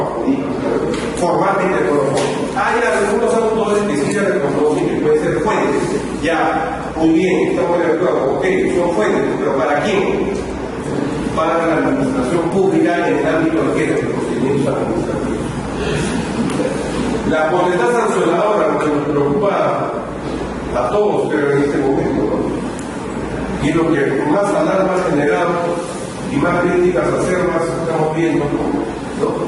jurídicas, formalmente no lo son. Hay algunos autores que sí se reconocen que pueden ser fuentes. Ya, muy bien, estamos de acuerdo, ok, son fuentes, pero ¿para quién? Para la administración pública en el ámbito de los procedimientos administrativos. La potestad sancionadora, lo que nos preocupa a todos, pero en este momento, ¿no? Y lo que más alarma ha generado y más críticas acervas estamos viendo, ¿no?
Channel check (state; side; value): identical; both; correlation 1.00